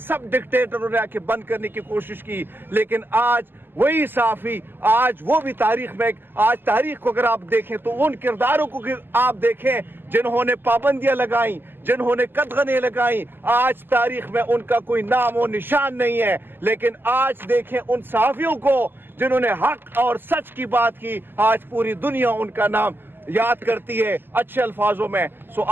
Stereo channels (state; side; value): late; left; 0.096 ms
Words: डिक्टेटरों ने आके बंद करने की कोशिश की। लेकिन आज वही सहाफी, आज वो भी तारीख में, आज तारीख को अगर आप देखें तो उन किरदारों को आप देखें जिन्होंने पाबंदियां लगाई, जिन्होंने कदगने लगाई, आज तारीख में उनका कोई नाम और निशान नहीं है। लेकिन आज देखें उन सहाफियों को जिन्होंने हक और सच की बात की, आज पूरी दुनिया उनका नाम याद करती है अच्छे अल्फाजों में। सो